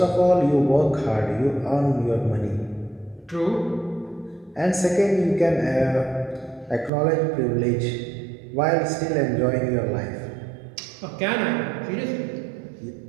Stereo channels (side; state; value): left; drops out; at 6.9 s